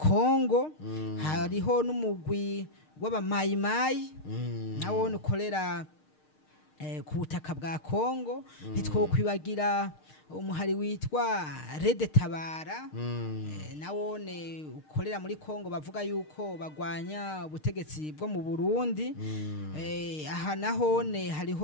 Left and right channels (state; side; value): late; right; 6.5 ms